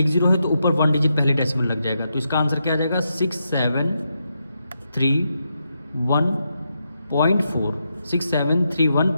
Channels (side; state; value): both; inverted; correlation -0.83